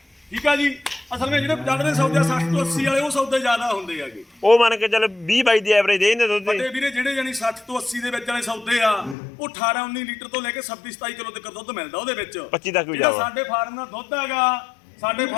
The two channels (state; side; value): drops out; right; at 9.2 s